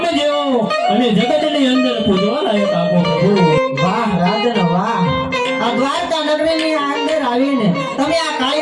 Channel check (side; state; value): both; identical; correlation 1.00